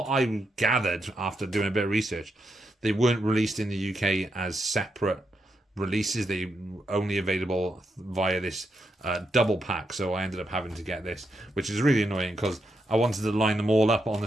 I gathered after doing a bit of research, they weren't released in the UK as separate releases. They only available via this double pack, so I ended up having to get this, which is really annoying because I wanted to line them all up on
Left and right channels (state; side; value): normal; both; correlation 0.82